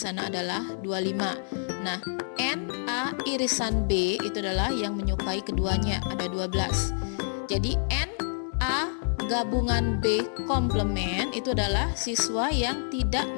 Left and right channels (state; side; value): silent; right; digital silence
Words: adalah 25. Nah, NA irisan B itu adalah yang menyukai keduanya, ada 12. Jadi NA gabungan B komplement itu adalah siswa yang tidak